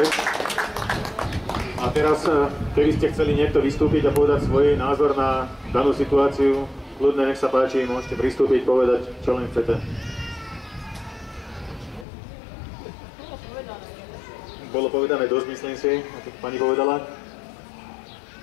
A teraz, keby ste chceli niekto vystúpiť a povedať svoj názor na danú situáciu, kľudne, nech sa páči, môžete pristúpiť, povedať, čo len chcete. Bolo povedané dosť, myslím si, ako pani povedala.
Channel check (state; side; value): drops out; right; at 12.1 s